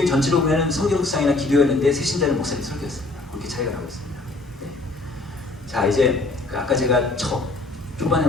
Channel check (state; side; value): quieter; right; 3.1 dB